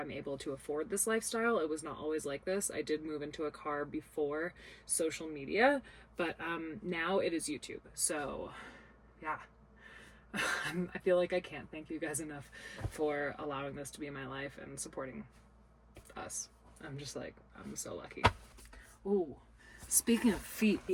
able to afford this lifestyle, it was not always like this. I did move into a car before social media, but now it is YouTube. So yeah. I feel like I can't thank you guys enough for allowing this to be my life and supporting us. I'm just I'm so lucky. Ooh. Speaking of feet,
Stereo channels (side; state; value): both; identical; correlation 1.00